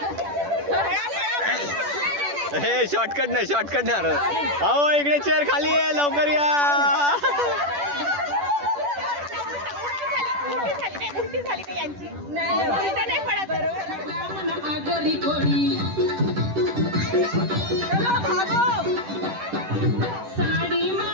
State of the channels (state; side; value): late; left; 10 ms